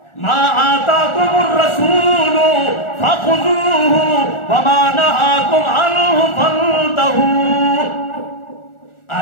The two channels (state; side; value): late; right; 1.4 ms